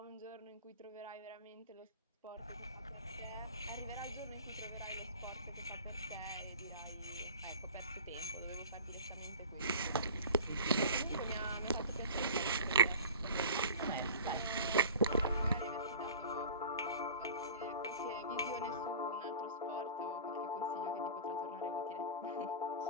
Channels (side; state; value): both; inverted; correlation -0.39